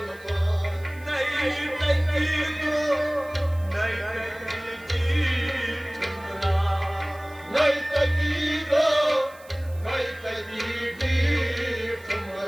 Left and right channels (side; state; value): right; noise; hiss, 25 dB below the sound